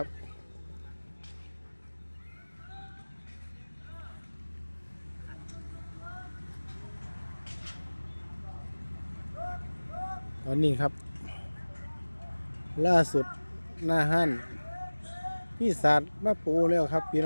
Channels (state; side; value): inverted; both; correlation -1.00